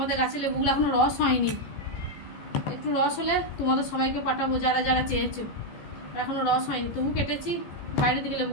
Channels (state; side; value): late; right; 14 ms